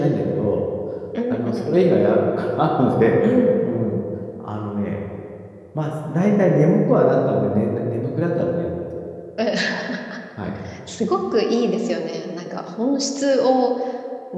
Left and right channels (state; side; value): identical; both; correlation 1.00